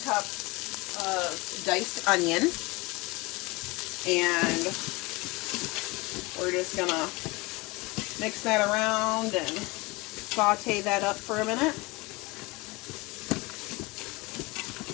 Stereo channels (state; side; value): quieter; right; 24.3 dB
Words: of diced onion, and we're just gonna mix that around and saute that up for a minute.